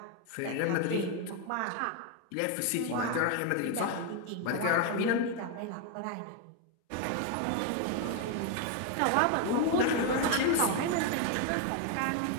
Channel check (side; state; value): both; different; correlation 0.01